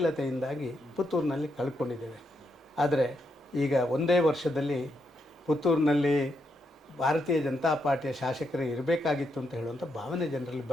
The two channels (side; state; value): both; normal; correlation 0.80